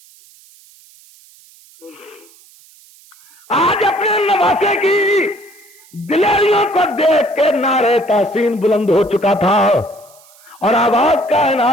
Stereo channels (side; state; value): right; noise; hiss, 26 dB below the sound